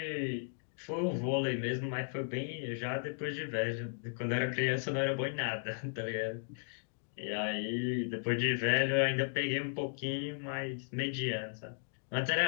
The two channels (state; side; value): silent; right; digital silence